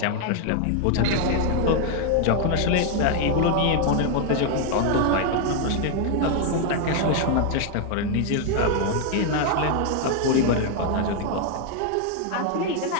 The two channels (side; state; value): both; different; correlation 0.00